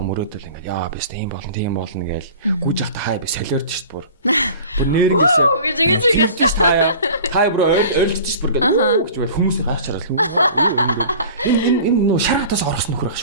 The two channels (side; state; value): both; inverted; correlation -0.42